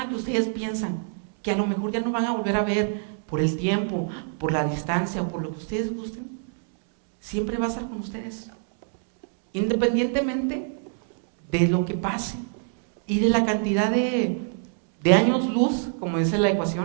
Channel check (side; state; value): left; silent; digital silence